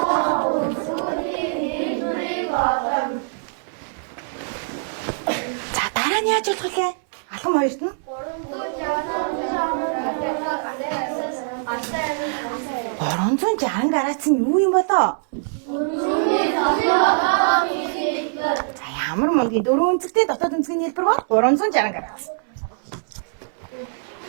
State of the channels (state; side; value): silent; left; 61 dB below the other